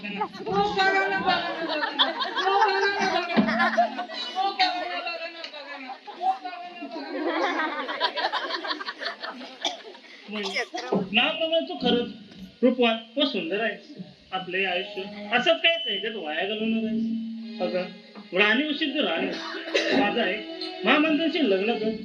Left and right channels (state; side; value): identical; both; correlation 1.00